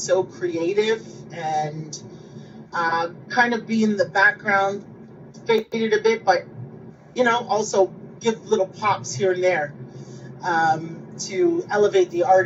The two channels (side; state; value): both; identical; correlation 1.00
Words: creative and kind of be in the background, fade it a bit, but also give little pops here and there to elevate the